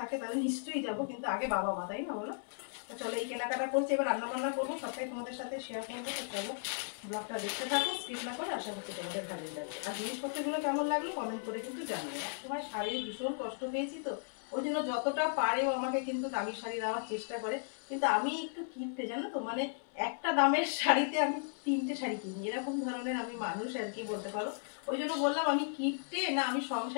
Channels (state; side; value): silent; right; 54 dB below the other